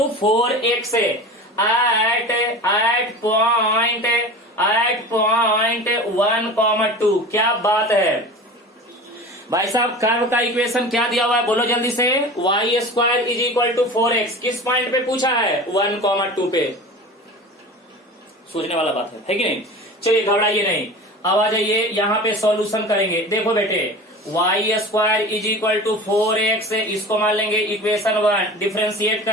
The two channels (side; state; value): both; normal; correlation 0.35